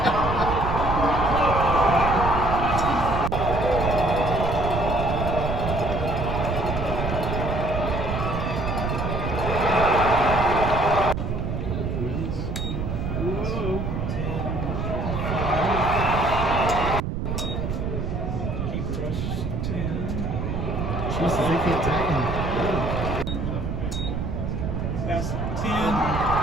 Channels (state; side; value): noise; right; rumble, 2 dB below the sound